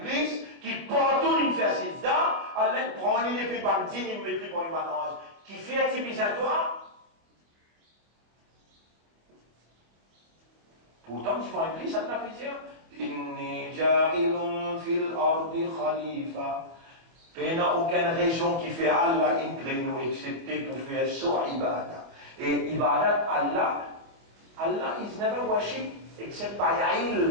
qui partout il fait sida, Allah prend une épée bandine, il met pour une balance. Qui fait activiser à toi. Pourtant, tu vois Iblis, ça ne peut dire Inni ja'ilun fil ardi khalifa. Il n'y a aucune région qui fait Allah inclinou, excepté pour faire sur ibadah. Et ibadat Allah is never worship except by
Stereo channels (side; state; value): left; late; 25 ms